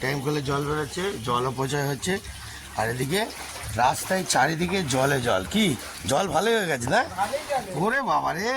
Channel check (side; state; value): both; identical; correlation 1.00